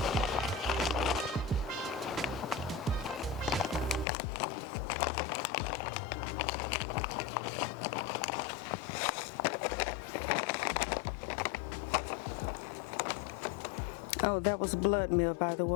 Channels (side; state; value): right; drops out; at 4.0 s